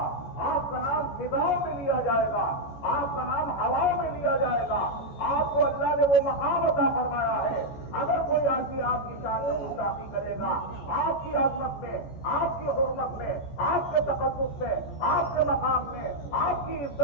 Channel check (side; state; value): right; late; 14 ms